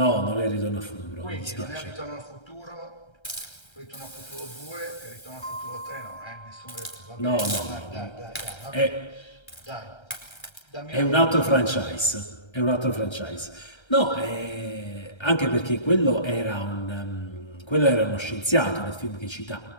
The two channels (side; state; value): right; late; 1.3 ms